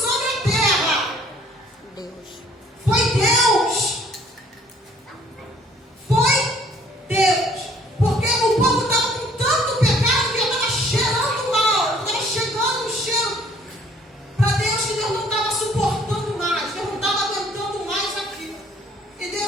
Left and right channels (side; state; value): both; normal; correlation 0.59